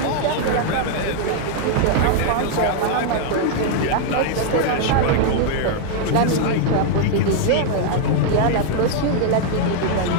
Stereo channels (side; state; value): both; different; correlation 0.00